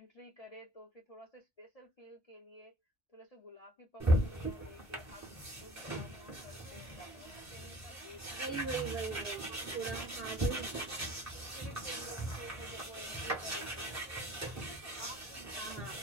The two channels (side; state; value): both; normal; correlation 0.48